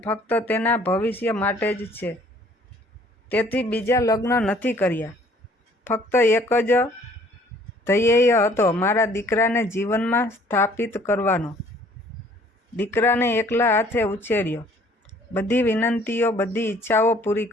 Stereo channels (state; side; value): normal; both; correlation 0.57